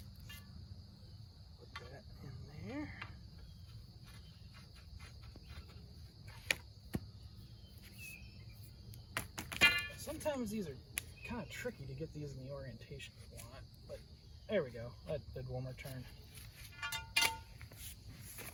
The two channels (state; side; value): identical; both; correlation 1.00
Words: Put that in there. Sometimes these are kind of tricky to get these in the orientation you want, but there we go. That did one more turn.